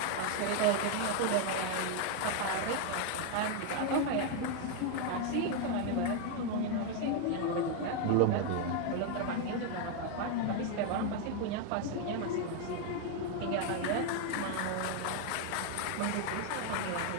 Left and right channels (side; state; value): both; different; correlation 0.01